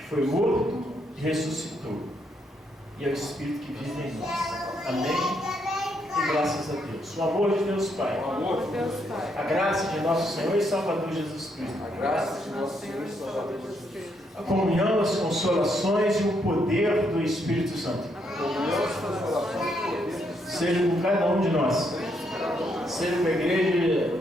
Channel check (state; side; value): normal; both; correlation 0.75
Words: foi morto e ressuscitou, e é o Espírito que vive em nós. Amém? E graças a Deus. O amor de Deus Pai. O amor de Deus Pai. A graça de nosso Senhor e Salvador Jesus Cristo. A graça de nosso Senhor e Salvador Jesus Cristo. A comunhão, as consolações e o poder do Espírito Santo. A comunhão, as consolações e o poder do Espírito Santo. Seja com cada um de nós. Seja com a igreja